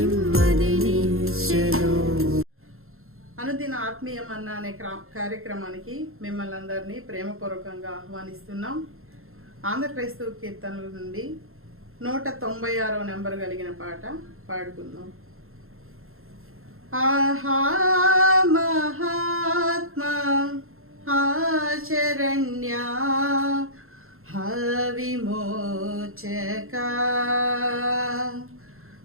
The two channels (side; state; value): left; late; 0.62 ms